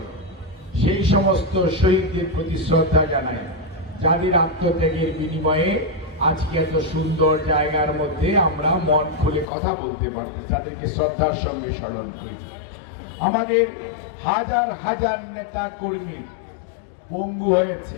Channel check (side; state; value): right; drops out; at 9.5 s